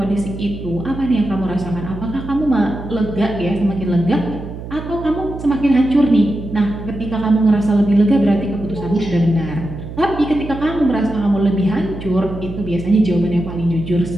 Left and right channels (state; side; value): noise; right; hum, 10 dB below the sound